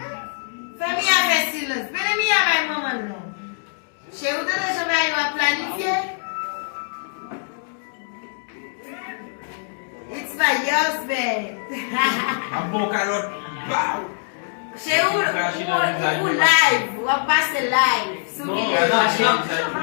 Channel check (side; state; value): right; silent; digital silence